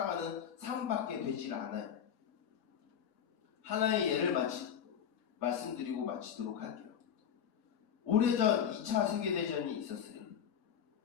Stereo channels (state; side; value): quieter; right; 8.6 dB